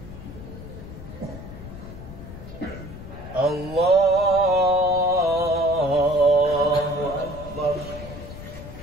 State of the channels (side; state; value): left; noise; rumble, 13 dB below the sound